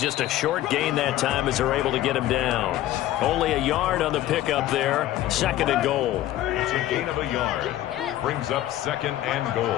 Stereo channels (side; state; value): right; quieter; 13.9 dB